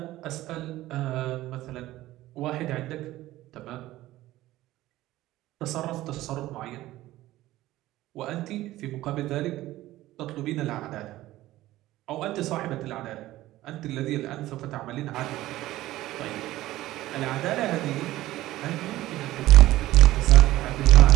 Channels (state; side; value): quieter; left; 16.0 dB